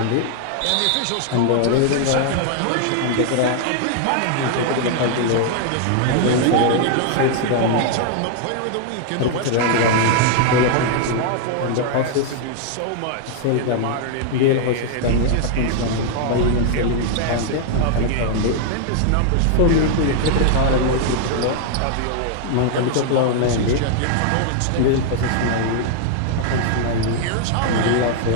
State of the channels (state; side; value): different; both; correlation 0.00